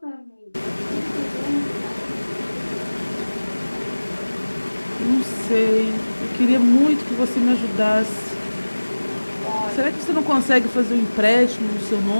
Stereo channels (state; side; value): inverted; both; correlation -1.00